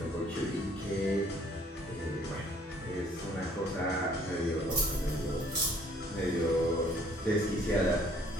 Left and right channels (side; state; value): both; normal; correlation 0.59